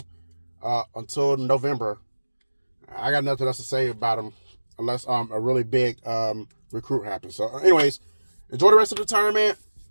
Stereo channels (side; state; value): both; inverted; correlation -1.00